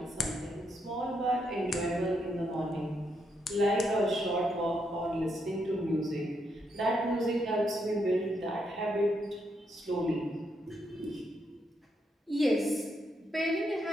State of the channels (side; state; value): both; normal; correlation 0.78